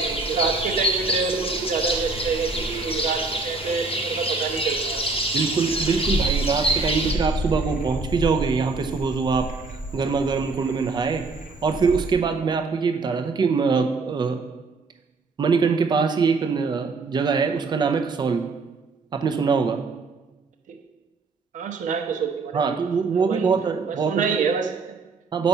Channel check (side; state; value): left; quieter; 4.0 dB